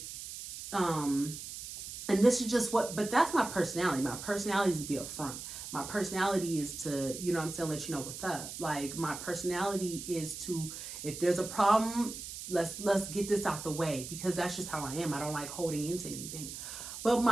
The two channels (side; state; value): right; noise; hiss, 9 dB below the sound